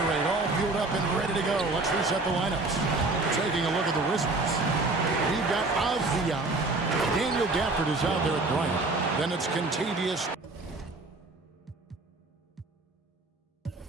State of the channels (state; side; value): quieter; left; 3.3 dB